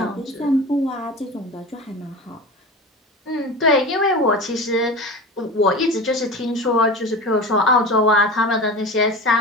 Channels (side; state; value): both; normal; correlation 0.31